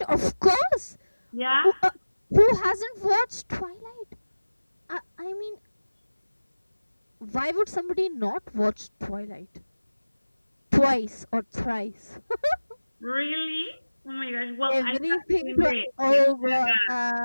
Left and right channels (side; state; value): both; inverted; correlation -1.00